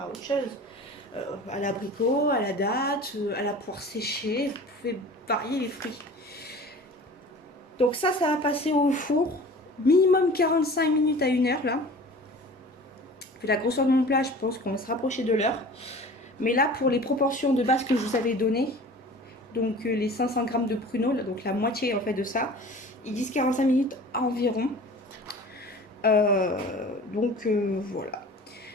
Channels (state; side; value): normal; both; correlation 0.42